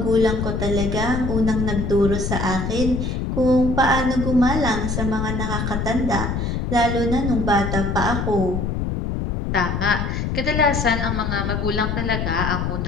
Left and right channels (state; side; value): noise; left; rumble, 1 dB below the sound